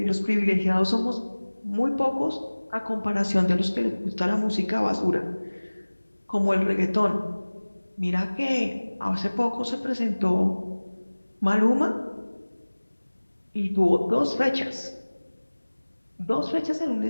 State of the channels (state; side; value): inverted; both; correlation -1.00